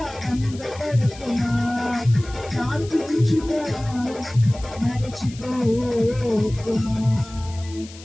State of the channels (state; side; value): noise; left; hiss, 19 dB below the sound